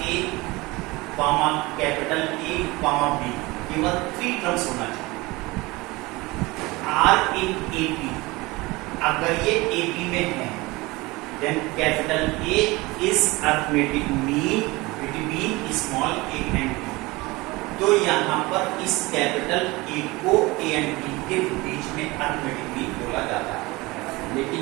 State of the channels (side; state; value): left; quieter; 22.4 dB